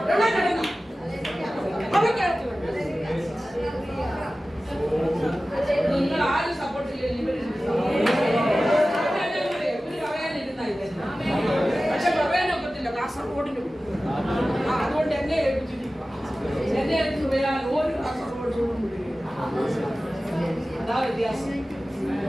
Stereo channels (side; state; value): both; normal; correlation 0.96